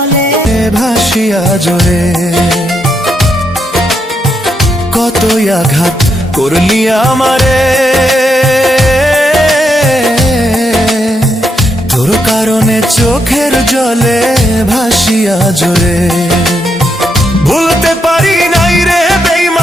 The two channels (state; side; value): normal; both; correlation 0.80